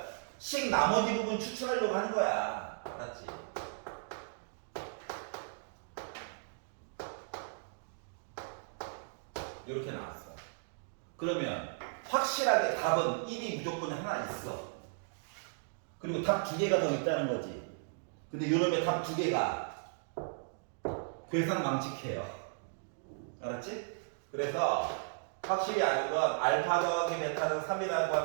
식 나머지 부분 추출하려고 하는 거야. 알았지? 이렇게 나왔어. 그러면 확실하게 답은 1이 무조건 하나 있어. 그리고 답 2개가 더 있다는 거지. 근데 요놈의 답 2개가 괴상망측해요. 알았지? 그래서 확실히 아는 건 알파 더하기 베타는 3이라고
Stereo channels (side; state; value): left; silent; digital silence